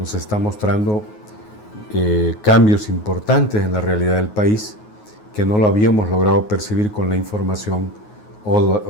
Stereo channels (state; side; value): late; right; 9.4 ms